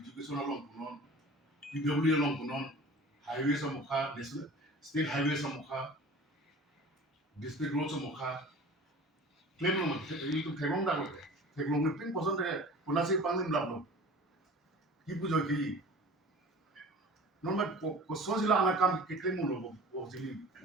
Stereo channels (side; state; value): both; normal; correlation 0.41